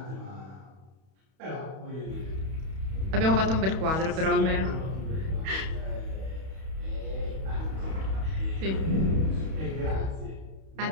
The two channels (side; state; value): left; late; 31 ms